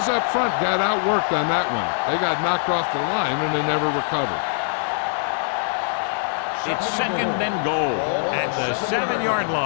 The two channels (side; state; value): right; silent; digital silence